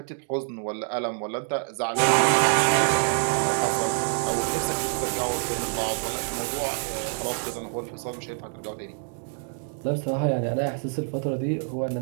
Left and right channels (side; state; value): left; silent; 61 dB below the other